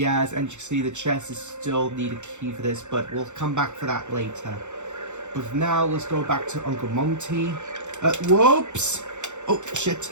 and you can see the chest is still need a key for this, but we'll come back for that later. But for now, let's go back to Uncle Monty. Whoops! Oh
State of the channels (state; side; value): late; left; 0.84 ms